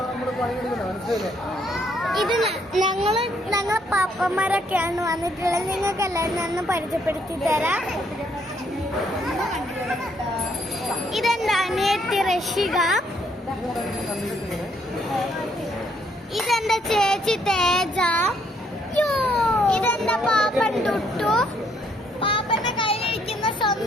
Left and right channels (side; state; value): both; normal; correlation 0.70